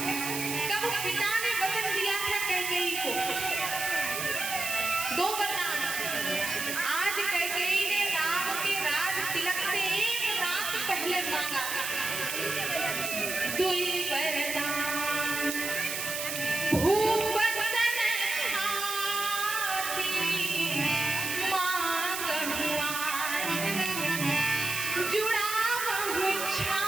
कब पिता ने वचन दिया था कैकेयी को 2 वरदान। आज कैकेयी ने राम के राज तिलक से 1 रात पहले मांगा 2 वरदान। भूप सन खाती मांगहु आज, जुड़ावहु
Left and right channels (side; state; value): right; noise; hiss, 4 dB below the sound